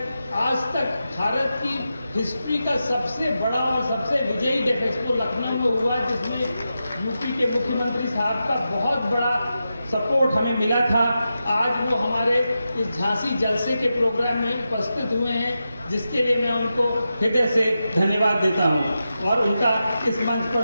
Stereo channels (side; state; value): both; inverted; correlation -0.90